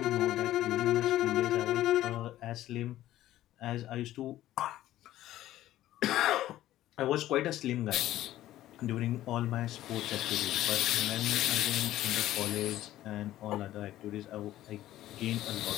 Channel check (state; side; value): quieter; right; 14.1 dB